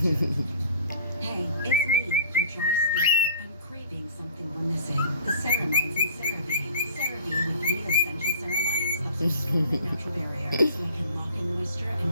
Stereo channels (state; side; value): inverted; both; correlation -0.48